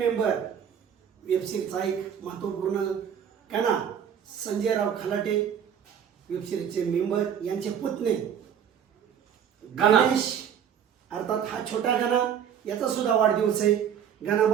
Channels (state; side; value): quieter; left; 8.5 dB